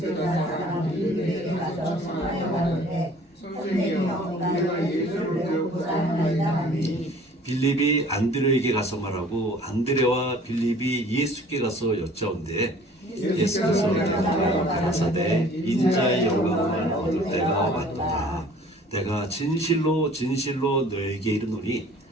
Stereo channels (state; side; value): normal; both; correlation 0.51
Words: 사람들이 내게 가서 청하여가는데 선생님이여 우리가 예수를 배우고자 하나이다 하니 빌립이 안드레에게 가서 말하고 안드레와 빌립이 예수께 가서 여짜온대 예수께서 대답하여 가라사대 인자의 영광을 얻을 때가 왔도다. 내가 진실로 진실로 너에게 이르노니